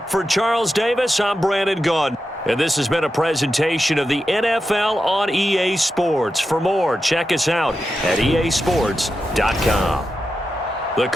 for Charles Davis. I'm Brandon Gaudin. And this has been a presentation of the NFL on EA Sports. For more, check us out at easports.com. The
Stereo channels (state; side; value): normal; both; correlation 0.89